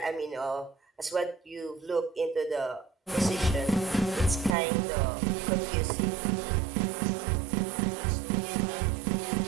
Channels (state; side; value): drops out; left; at 4.5 s